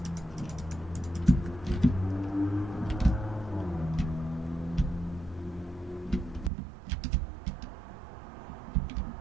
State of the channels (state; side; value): drops out; left; at 6.5 s